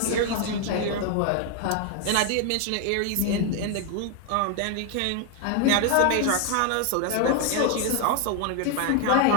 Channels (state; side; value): different; both; correlation 0.01